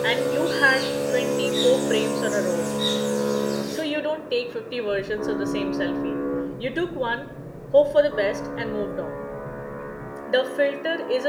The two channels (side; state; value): both; identical; correlation 1.00